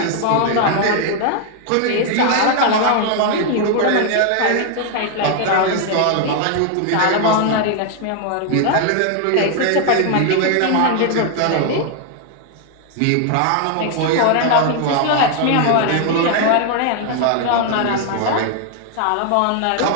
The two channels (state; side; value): different; both; correlation 0.00